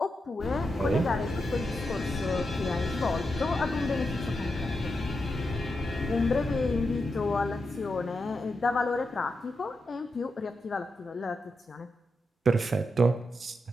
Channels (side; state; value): both; normal; correlation 0.86